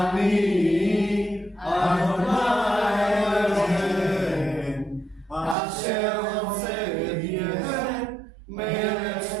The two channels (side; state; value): left; drops out; at 5.6 s